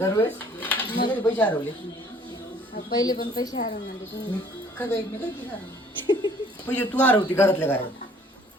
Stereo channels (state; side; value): normal; both; correlation 0.56